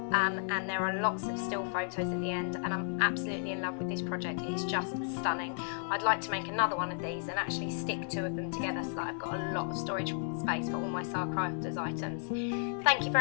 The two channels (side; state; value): right; silent; digital silence